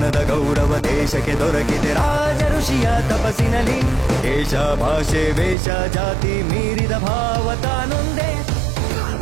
ಗೌರವ ದೇಶಕ್ಕೆ ದೊರಕಿದೆ ರಾಜ ಋಷಿಯ ತಪಸ್ಸಿನಲ್ಲಿ ದೇಶ ಭಾಷೆ ವೇಷ ಜಾತಿ ಮೀರಿದ ಭಾವ ತಾನೊಂದೇ पुकार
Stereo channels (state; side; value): drops out; left; at 5.6 s